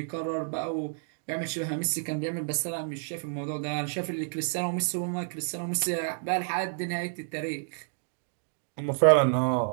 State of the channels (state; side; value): silent; left; digital silence